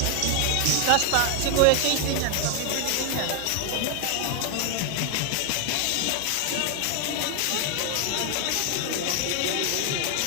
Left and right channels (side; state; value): both; different; correlation 0.01